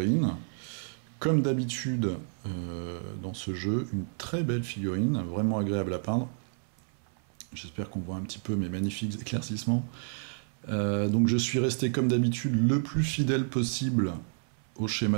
Comme d'habitude dans ce jeu, une très belle figurine, vraiment agréable à peindre. J'espère qu'on voit un petit peu mes magnifiques éclaircissements. Donc je suis resté comme d'habitude le plus fidèle possible au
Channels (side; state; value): left; silent; 58 dB below the other